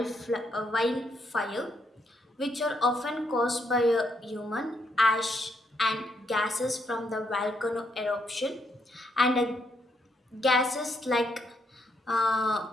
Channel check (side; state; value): both; normal; correlation 0.76